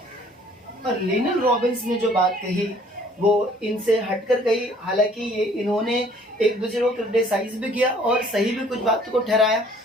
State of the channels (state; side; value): normal; both; correlation 0.57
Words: और लिनल रॉबिन्स ने जो बात कही वो इनसे हटकर कही, हालांकि ये इन्होंने एक दूसरे को क्रिटिसाइज भी किया और सही भी कुछ बातों को ठहराया।